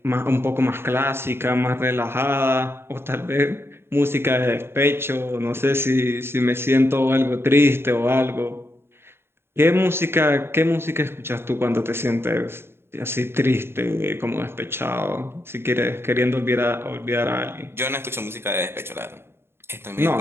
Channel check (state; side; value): late; left; 0.11 ms